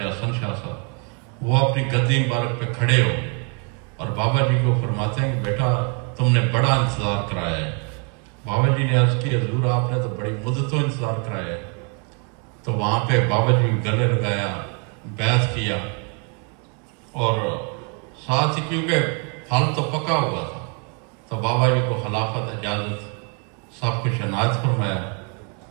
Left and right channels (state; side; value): quieter; left; 37.1 dB